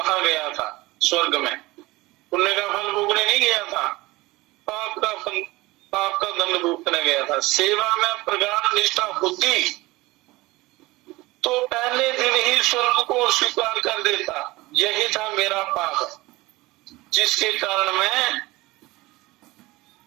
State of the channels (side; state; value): left; quieter; 20.6 dB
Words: गया था स्वर्ग में। पुण्य का फल भोगने नहीं गया था, पाप का दंड भुगतने गया था। सेवा में प्रगाढ़ निष्ठा होती तो पहले दिन ही स्वर्ग को स्वीकार कर देता। यही था मेरा पाप, जिसके कारण मैं,